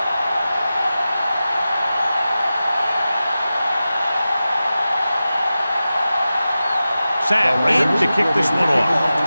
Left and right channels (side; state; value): both; inverted; correlation -0.94